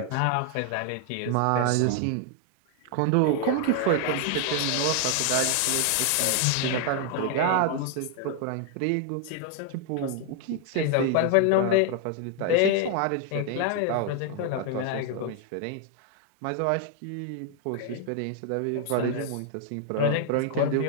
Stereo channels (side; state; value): both; different; correlation 0.00